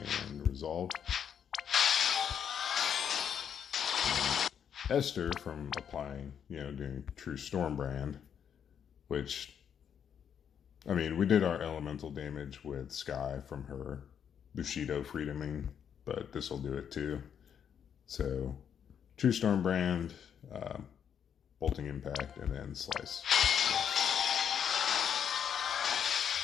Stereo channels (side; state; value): right; quieter; 8.2 dB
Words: and Resolve. Esther from applying, doing True Stormbrand, which, I mean, we did our elemental damage with Skye from her Bushido Freedoming, but this will do it too. So, True Stormbrand, Bolting Impact, and then Slice.